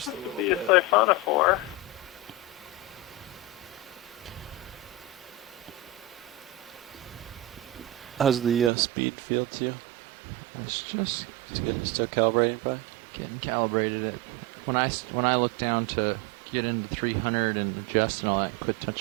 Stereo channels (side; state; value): left; drops out; at 8.7 s